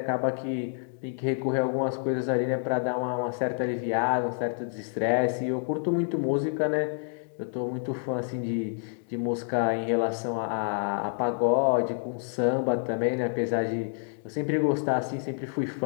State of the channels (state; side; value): silent; right; digital silence